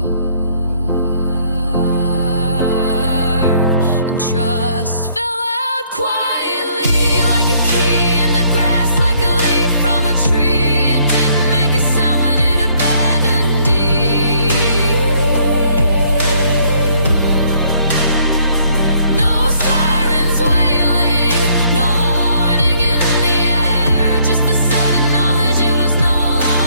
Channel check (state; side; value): inverted; both; correlation -0.65